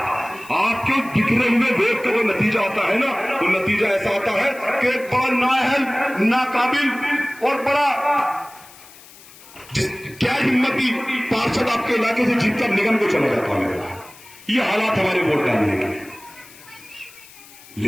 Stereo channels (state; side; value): noise; left; hiss, 21 dB below the sound